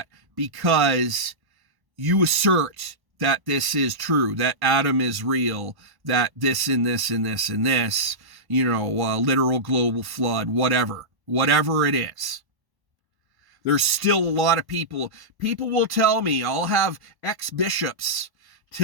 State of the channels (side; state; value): left; late; 1.1 ms